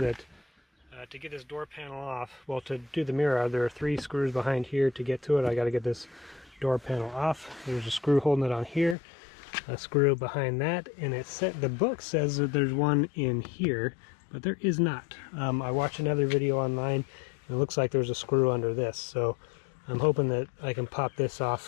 to get this door panel off, well, to do the mirror, there are 3 screws behind here to get to it. I got to get this door panel off. There's a screw holding it on here, a screw behind that, and the book says that there's one in here, but there is not. I watched another video online, and it looks like there's a screw under this, so I'm hoping that I can pop this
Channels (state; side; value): drops out; right; at 9.0 s